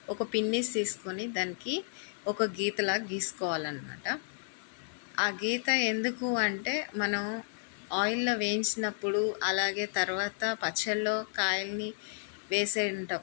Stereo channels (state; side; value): silent; right; digital silence